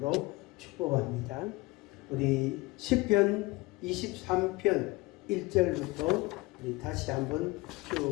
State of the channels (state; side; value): quieter; right; 22.6 dB